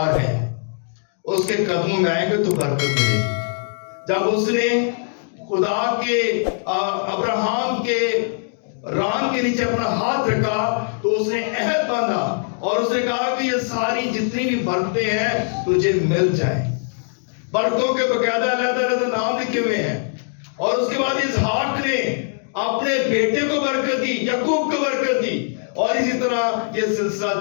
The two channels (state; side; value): silent; right; digital silence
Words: ہے. اس کے قدموں میں آئیں گے تو برکت ملے گی. جب اس نے خدا کے ابراہم کے ران کے نیچے اپنا ہاتھ رکھا تو اس نے عہد باندھا اور اس نے کہا کہ یہ ساری جتنی بھی برکتیں ہیں تجھے مل جائیں. برکتوں کے باقاعدہ علیحدہ نام لکھے ہوئے ہیں. اور اس کے بعد اسحاق نے اپنے بیٹے کو برکت دی، یعقوب کو برکت دی، اور اسی طرح یہ